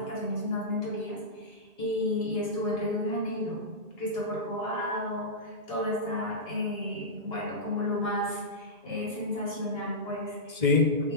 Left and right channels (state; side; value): late; left; 2.0 ms